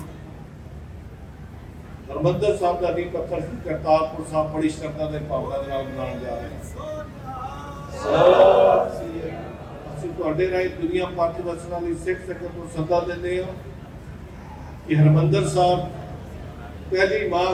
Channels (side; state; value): both; identical; correlation 1.00